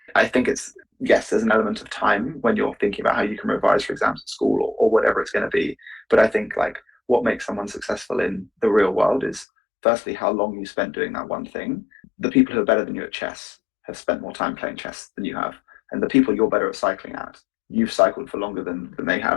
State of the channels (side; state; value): right; drops out; at 9.5 s